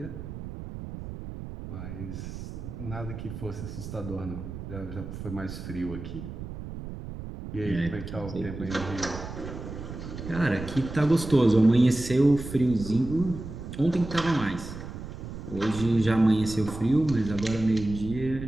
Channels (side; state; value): right; noise; rumble, 9 dB below the sound